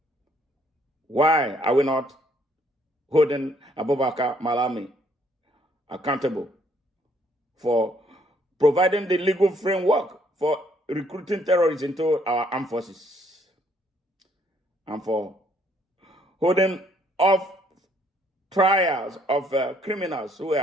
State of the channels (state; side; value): normal; both; correlation 0.66